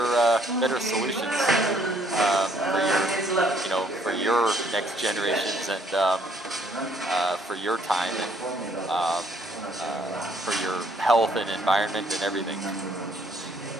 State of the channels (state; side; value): normal; both; correlation 0.65